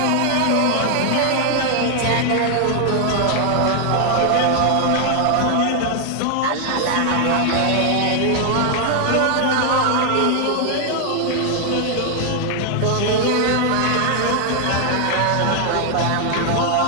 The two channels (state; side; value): different; both; correlation 0.00